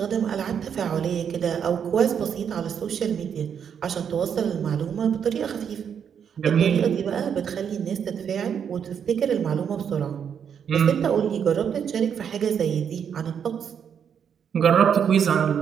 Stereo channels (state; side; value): quieter; left; 7.8 dB